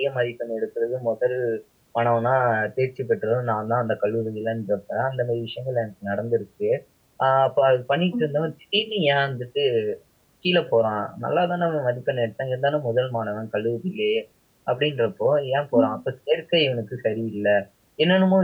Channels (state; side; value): identical; both; correlation 1.00